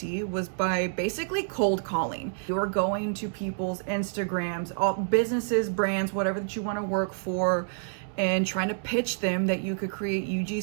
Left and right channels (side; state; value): left; silent; 59 dB below the other